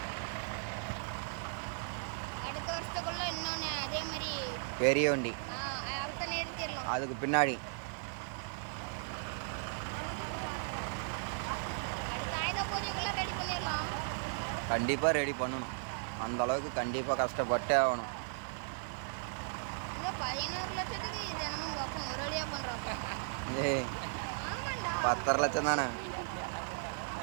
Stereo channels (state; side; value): silent; left; 54 dB below the other